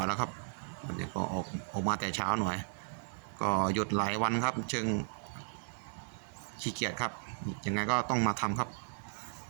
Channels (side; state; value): left; silent; digital silence